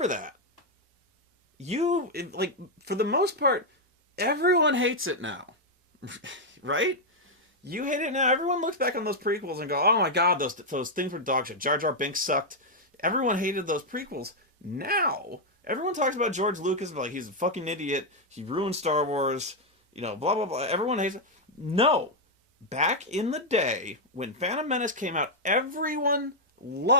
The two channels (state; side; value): normal; both; correlation -0.02